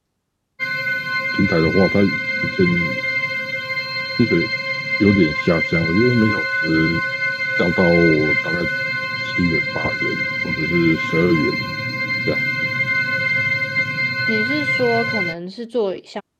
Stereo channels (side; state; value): both; identical; correlation 1.00